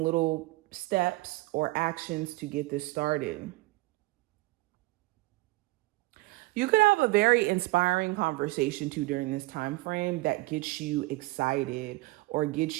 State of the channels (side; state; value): left; quieter; 20.8 dB